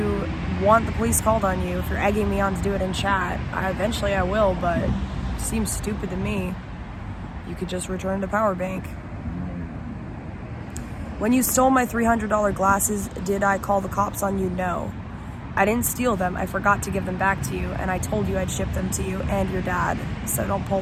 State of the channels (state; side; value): identical; both; correlation 1.00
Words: want the police called on you, if you're egging me on to do it in chat, eventually I will, but it seems stupid to me. You could just return the power bank. When you stole my $300 glasses, did I call the cops on you? No. I didn't steal them. I forgot to give them back to you, and I told you I'd ship them to you and your dad, so don't pull